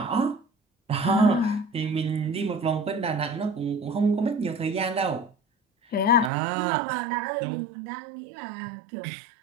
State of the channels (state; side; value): drops out; left; at 6.3 s